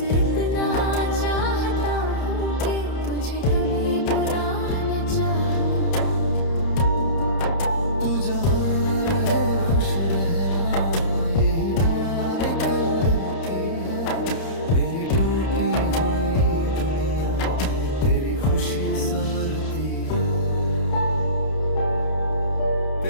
इतना चाहता हूँ कि तुझे कभी बुरा न चाहूं। तू जहाँ रहे खुश रहना, यही दुआ निकलती है। मेरी टूटी हुई दुनिया में तेरी खुशी संवरती है।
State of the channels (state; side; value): late; right; 31 ms